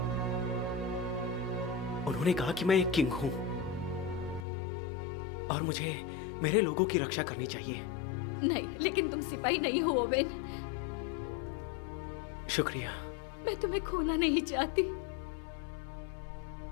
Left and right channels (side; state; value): right; drops out; at 4.5 s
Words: उन्होंने कहा कि मैं एक किंग हूं और मुझे मेरे लोगों की रक्षा करनी चाहिए। नहीं, लेकिन तुम सिपाही नहीं हो ओवेन। शुक्रिया। मैं तुम्हें खोना नहीं चाहती।